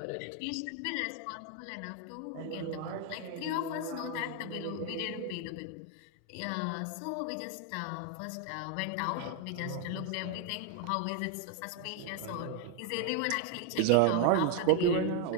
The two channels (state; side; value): different; both; correlation 0.01